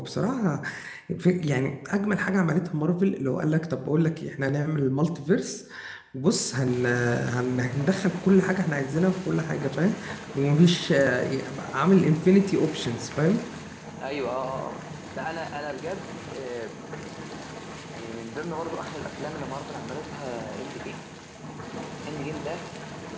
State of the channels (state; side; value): identical; both; correlation 1.00